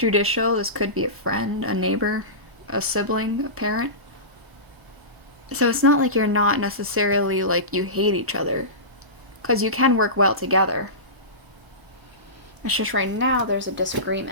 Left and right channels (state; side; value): late; left; 1.0 ms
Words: This could be a friend, a neighbor, a sibling, a parent. So it's not like you're not necessarily like you hate each other, because you can work well together. It's just right now there's a